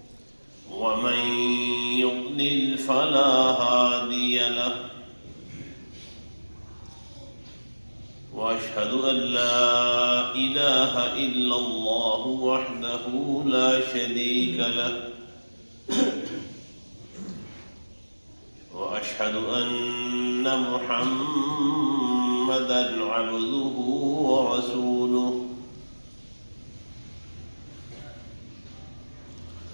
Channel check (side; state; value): both; inverted; correlation -1.00